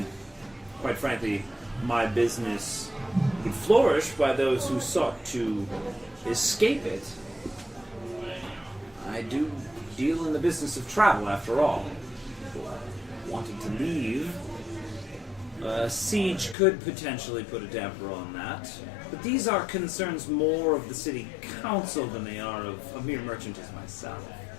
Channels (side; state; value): right; drops out; at 16.6 s